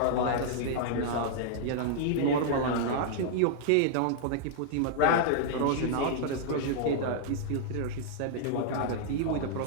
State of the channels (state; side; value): different; both; correlation -0.01